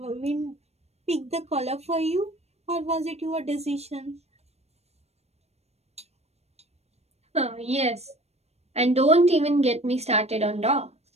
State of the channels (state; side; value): late; left; 0.31 ms